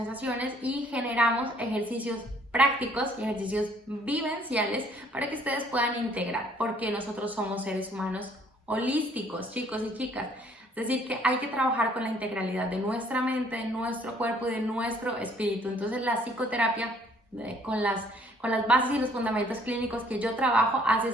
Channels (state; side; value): normal; both; correlation 0.61